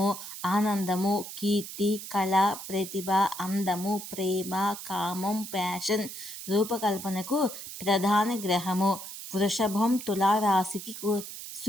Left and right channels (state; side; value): noise; right; hiss, 10 dB below the sound